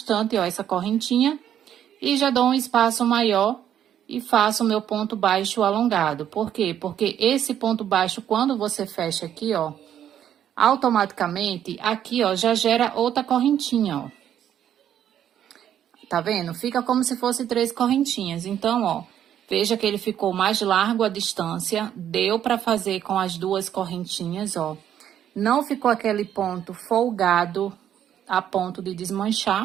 ó, essa correntinha e já dou um espaço maior e faço o meu ponto baixo alongado. Por quê? Porque esse ponto baixo, quando você fecha aqui, ó, automaticamente, aqui, ó, já gera outra correntinha, ó. Tá vendo? Fica como se fosse 3 correntinhas. Então, ó, veja que ele ficou mais largo a distância. Deu pra fazer com as 2 correntinhas, ó. Não ficou aquele ponto folgado a ponto de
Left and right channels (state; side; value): quieter; left; 10.2 dB